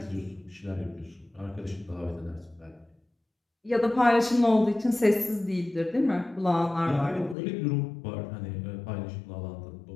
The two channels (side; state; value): right; drops out; at 7.4 s